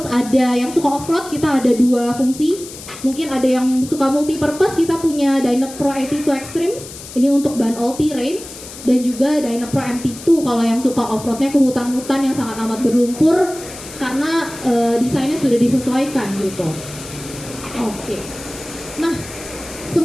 ada yang suka off-road, kita ada 2 fungsi. Mungkin ada yang suka multi-purpose, kita punya Dynapro AT2 Extreme, ini untuk ban all terrain, dan juga Dynapro MT2 kalau yang suka off-roadnya ke hutan-hutan yang sangat amat berlumpur, karena desainnya sudah disesuaikan gitu. Oke. Nah,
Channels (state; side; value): noise; left; hiss, 14 dB below the sound